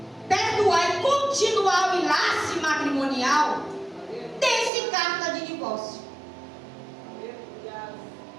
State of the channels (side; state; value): left; drops out; at 4.7 s